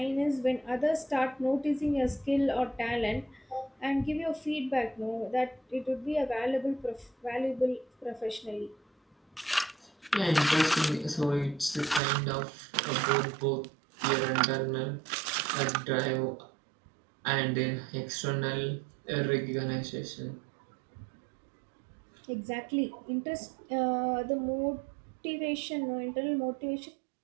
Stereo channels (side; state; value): left; drops out; at 12.0 s